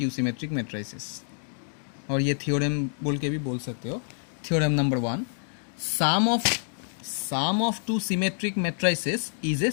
symmetric matrices. और ये थ्योरम बोल के भी बोल सकते हो. Theorem number 1, sum of two symmetric matrices is a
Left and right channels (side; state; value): right; silent; 60 dB below the other